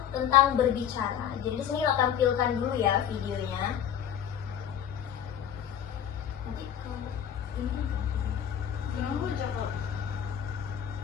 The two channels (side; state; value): right; quieter; 9.3 dB